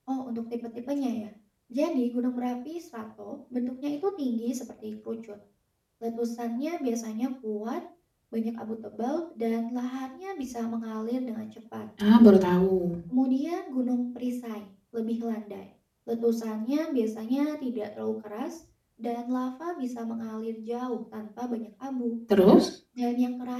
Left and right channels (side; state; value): both; identical; correlation 1.00